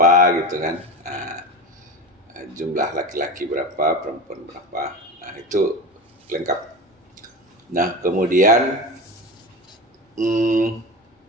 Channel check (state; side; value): normal; both; correlation 0.27